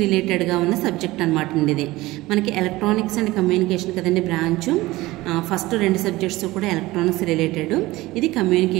రిలేటెడ్గా ఉన్న సబ్జెక్ట్ అనమాట అండి. ఇది మనకి ఎలక్ట్రానిక్స్ అండ్ కమ్యూనికేషన్ కదండి బ్రాంచ్. ఫస్ట్ 2 సబ్జెక్ట్స్ కూడా ఎలక్ట్రానిక్స్ రిలేటెడ్, ఇది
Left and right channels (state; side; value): quieter; left; 19.0 dB